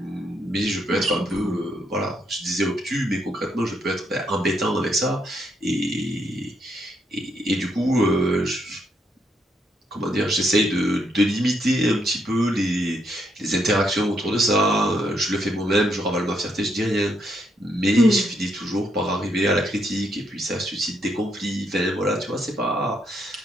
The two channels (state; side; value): normal; both; correlation 0.76